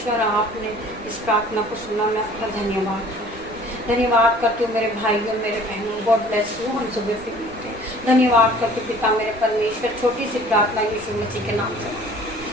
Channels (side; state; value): right; noise; rumble, 19 dB below the sound